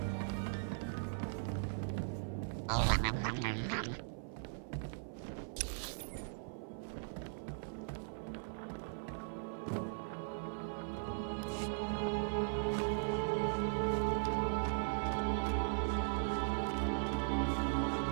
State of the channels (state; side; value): silent; left; 52 dB below the other